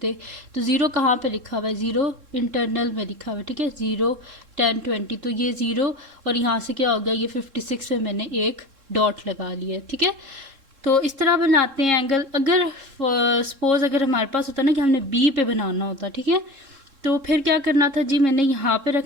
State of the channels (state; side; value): late; left; 3.7 ms